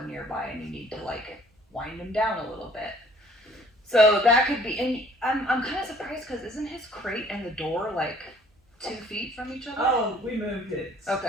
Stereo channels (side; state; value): both; normal; correlation 0.56